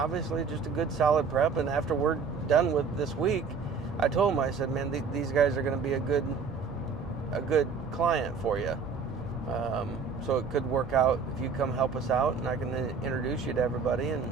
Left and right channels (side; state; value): left; quieter; 5.4 dB